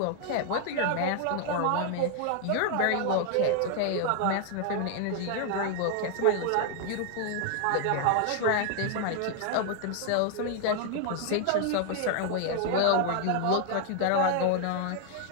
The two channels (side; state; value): both; different; correlation 0.00